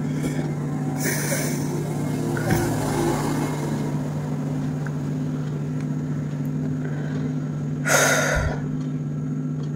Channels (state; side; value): identical; both; correlation 1.00